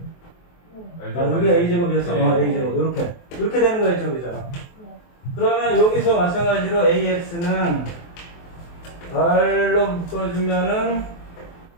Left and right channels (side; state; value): right; late; 23 ms